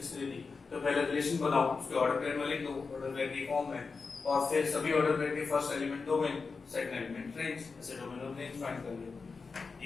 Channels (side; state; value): right; quieter; 4.6 dB